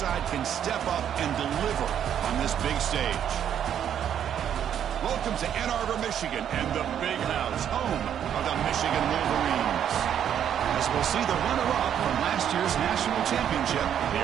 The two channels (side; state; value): left; quieter; 9.4 dB